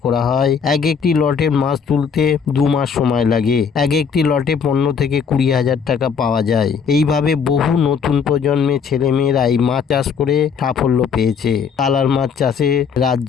করা হয়। একটি লটের মাছ তুলতে 2 মাস সময় লাগে। একটি লটে 15 থেকে 20 হাজার টাকা পাওয়া যায়। এইভাবে বহু নতুন প্রজন্মের ছেলেমেয়েরা এই মাছ চাষ করে সাফল্য পেয়েছে। কালার মাছ চাষে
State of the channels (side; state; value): right; quieter; 6.4 dB